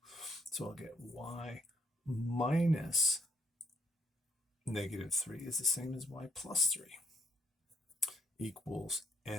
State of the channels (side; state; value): both; normal; correlation 0.71